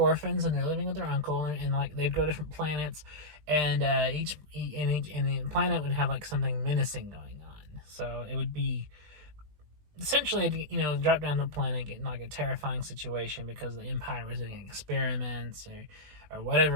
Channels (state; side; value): late; left; 20 ms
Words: and they're living with their uncle, and like they'd go to different planets, and each planet would have like something menacing going on. So it would be essentially, you know, drop down to the planet, get in like a terrifying situation because the Empire was doing experiments or